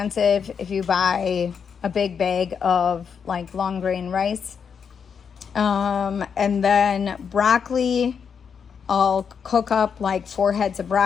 if you buy a big bag of like long grain rice. And then broccoli, I'll cook up like 4 heads of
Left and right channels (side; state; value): right; quieter; 6.7 dB